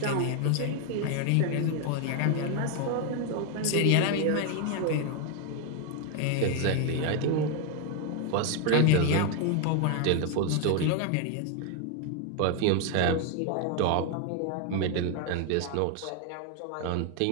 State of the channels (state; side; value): different; both; correlation 0.01